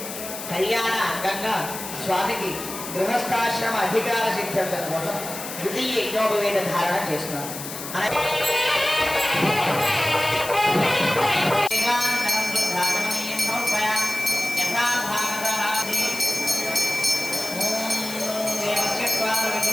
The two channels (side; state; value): left; noise; hiss, 9 dB below the sound